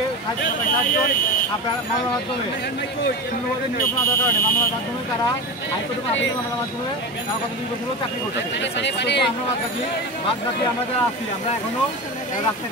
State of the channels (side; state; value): both; normal; correlation 0.25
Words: আপনার মামলার মাধ্যমে শূন্যপদে নিয়োগ না দেওয়ার কারণে মামলার মাধ্যমে তারা হাইকোর্টে মামলার মাধ্যমে তারা গত 2 বছরও চাকরি করছে। আমরা বাদ বাকি আমরা যারা আছি আমরা এখনও রাস্তায়